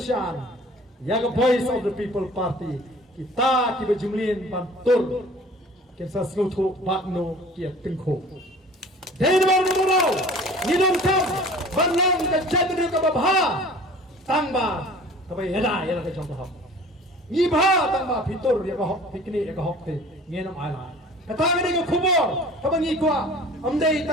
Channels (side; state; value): both; normal; correlation 0.46